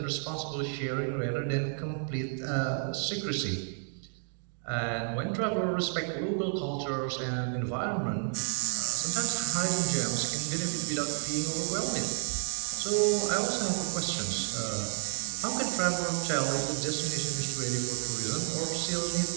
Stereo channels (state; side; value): silent; left; 57 dB below the other